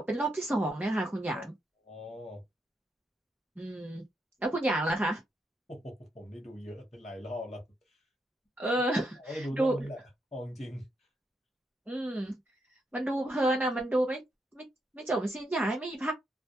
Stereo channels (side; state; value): both; normal; correlation 0.80